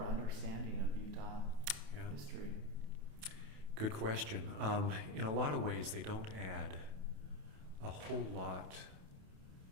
understanding of Utah history? Good question. In a lot of ways, they don't add a whole lot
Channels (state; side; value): late; left; 28 ms